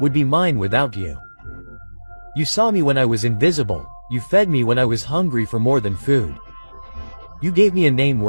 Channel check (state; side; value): inverted; both; correlation -1.00